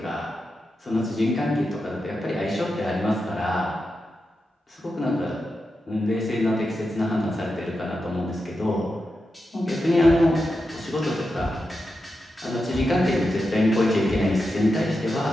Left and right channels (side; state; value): both; normal; correlation 0.89